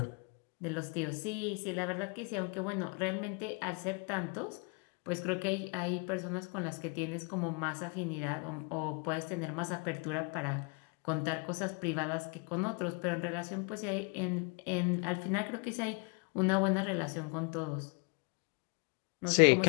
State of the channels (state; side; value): quieter; right; 34.1 dB